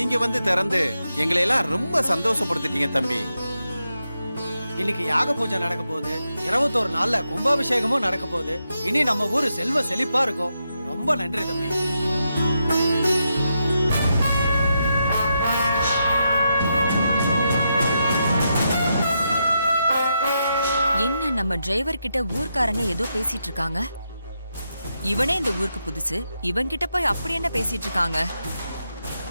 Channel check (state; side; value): inverted; both; correlation -0.84